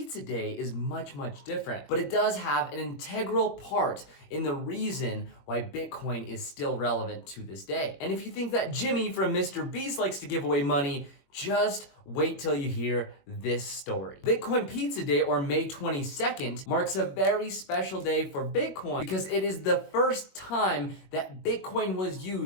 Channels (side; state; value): right; late; 22 ms